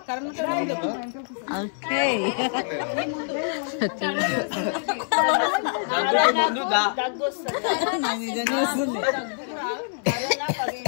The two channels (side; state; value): right; silent; 62 dB below the other